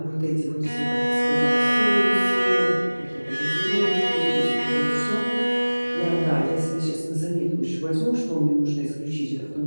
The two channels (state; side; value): inverted; both; correlation -1.00